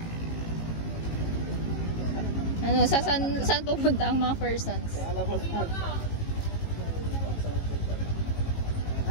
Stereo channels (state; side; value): late; right; 18 ms